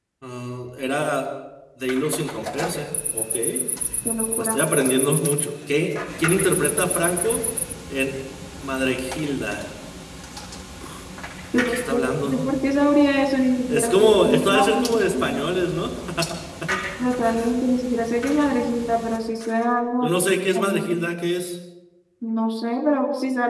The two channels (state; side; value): identical; both; correlation 1.00